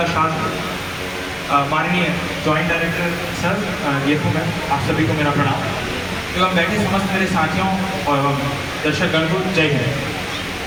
छात्र। माननीय जॉइंट डायरेक्टर सर, ये हूँ मैं, आप सभी को मेरा प्रणाम एवं बैठे समस्त मेरे साथियों और दर्शक गण को जय हिंद।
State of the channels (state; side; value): identical; both; correlation 1.00